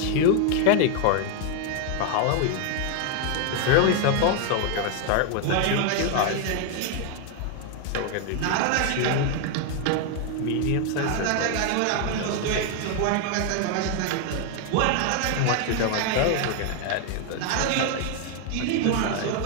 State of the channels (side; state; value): both; different; correlation 0.00